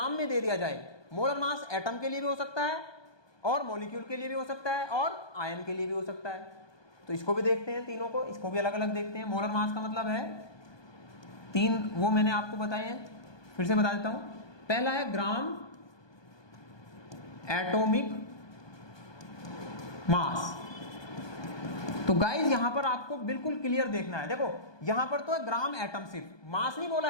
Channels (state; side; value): late; right; 1.2 ms